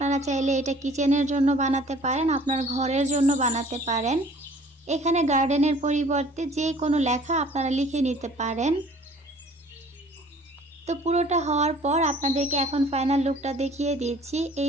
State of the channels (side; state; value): both; normal; correlation 0.52